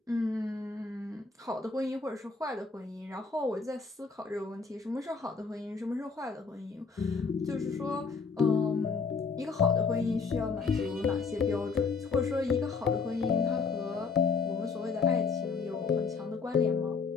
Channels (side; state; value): right; quieter; 4.9 dB